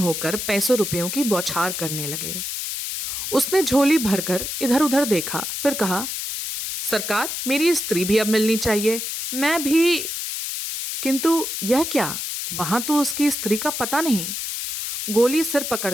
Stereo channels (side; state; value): left; noise; hiss, 4 dB below the sound